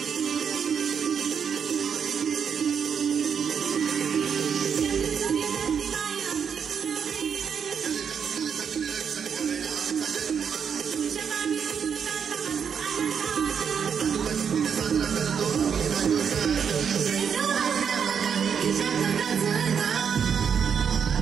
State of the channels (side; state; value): left; quieter; 7.1 dB